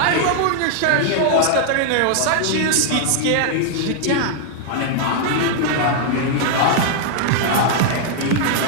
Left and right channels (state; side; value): different; both; correlation -0.01